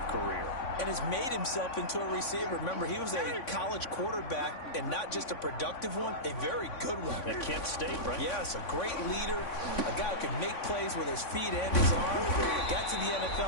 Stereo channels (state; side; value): late; right; 3.5 ms